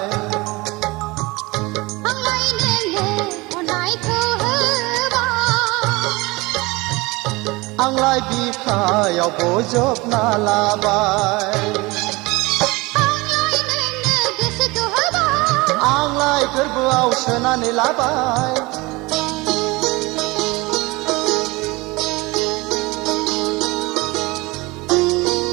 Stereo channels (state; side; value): quieter; left; 23.2 dB